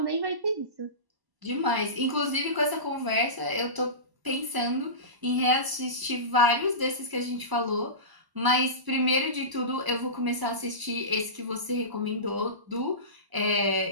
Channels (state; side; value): late; left; 1.0 ms